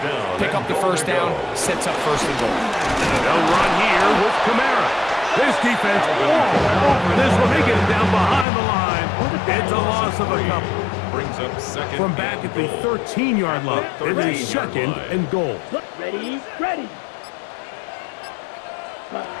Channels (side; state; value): right; drops out; at 8.5 s